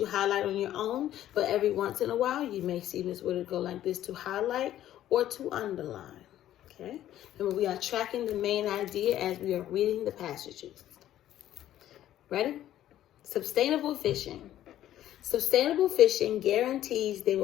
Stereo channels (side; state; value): right; quieter; 12.5 dB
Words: highlight on your own. But every once in a while, you may see Miss Woodard go like this to highlight or to underline. Okay. Remember, we are tracking the main idea as we are reading the passages. Ready? Sustainable fishing. Sustainable fishing guarantees there